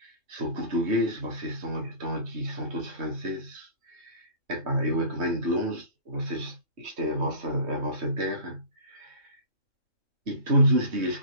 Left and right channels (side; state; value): left; late; 3.2 ms